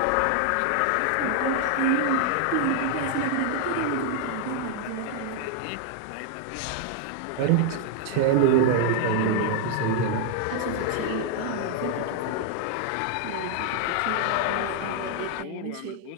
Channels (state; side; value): different; both; correlation 0.00